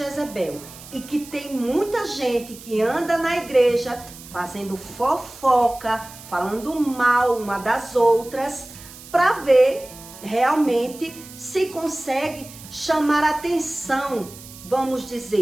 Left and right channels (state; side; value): noise; right; hiss, 17 dB below the sound